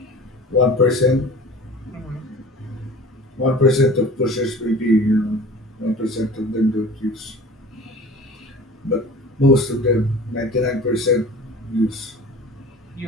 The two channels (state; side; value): normal; both; correlation 0.41